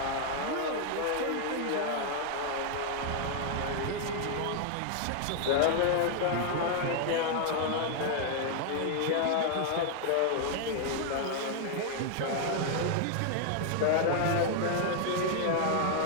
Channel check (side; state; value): both; different; correlation 0.00